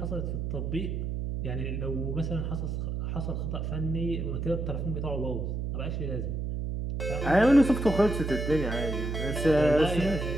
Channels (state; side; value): noise; right; hum, 2 dB below the sound